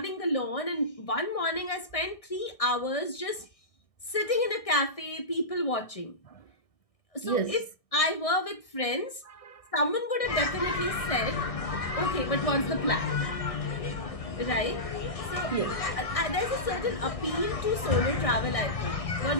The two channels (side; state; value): right; late; 1.6 ms